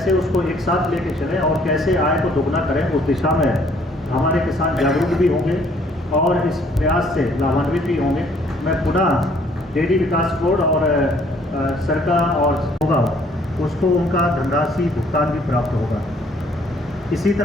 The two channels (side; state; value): both; normal; correlation 0.62